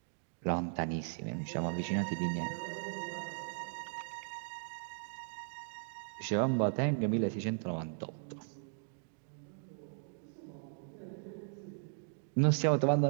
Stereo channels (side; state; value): left; silent; digital silence